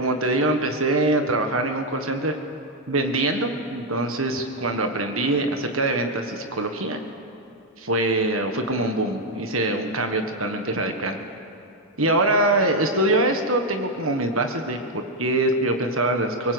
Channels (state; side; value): normal; both; correlation 0.03